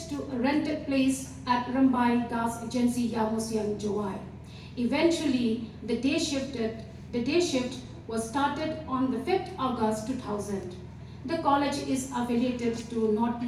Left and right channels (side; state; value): both; identical; correlation 1.00